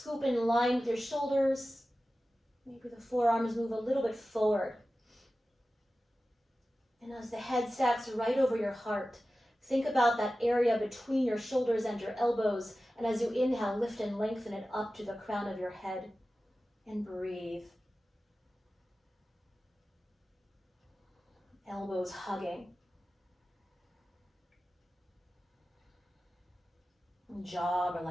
in line with your shoulders. Maybe the forearms move a little bit forward. And as the head stacks right over your heart, think about that area between your shoulders and your elbows. And as you inhale, lift and lengthen it up to the crown of your head. And breathe. Elbows hugging. And jaw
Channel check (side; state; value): both; normal; correlation 0.95